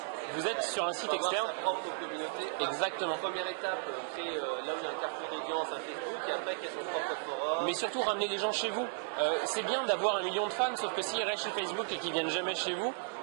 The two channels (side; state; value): left; silent; digital silence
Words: Vous êtes sur un site externe. Sa propre communauté. Exactement. Première étape, créer là où il y a un carrefour d'audience, un Facebook, et après créer son propre forum. Mais surtout ramener les gens chez vous. C'est bien d'avoir 1 million de fans, sauf que s'ils restent chez Facebook et qu'ils viennent jamais chez vous,